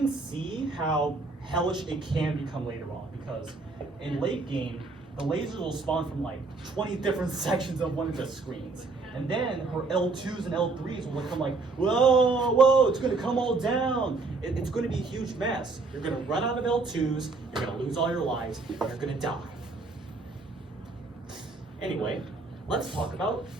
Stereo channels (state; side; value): quieter; left; 3.8 dB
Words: see how hellish it can become later on, because in late game, the lasers will spawn from like 20 different sections of one of the screens. And then her L2s and L3s will become like, whoa, it's gonna come all down. It's gonna be a huge mess. You're gonna run out of L2s, you're gonna lose all your lives, and you're gonna die. Anyway, let's talk about